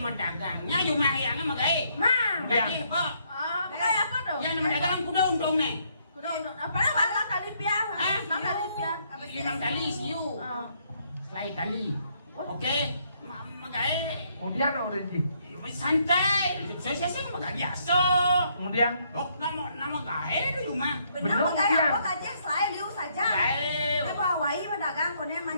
cuma yang megai. Nah, Jadi, kok kayak apa dong? yang medagang kuda untung nih. Kuda untuk apa? Mana kali piah? Mana kali piah? 5 kali siu. Selai kali. Oke, megai. Kemudian udah sih. Santai, saya sih megai biasa. Kemudian Oh, nama gae di rumah. Benar mau kayak apa aja selain liu saja. Gae. Ini bawa wai pedagang konen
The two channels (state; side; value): inverted; both; correlation -0.70